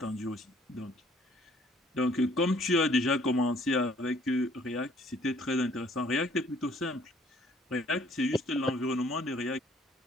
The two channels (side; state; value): both; normal; correlation 0.60